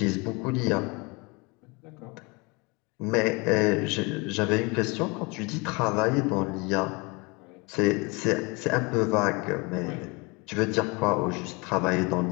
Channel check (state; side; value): quieter; right; 27.9 dB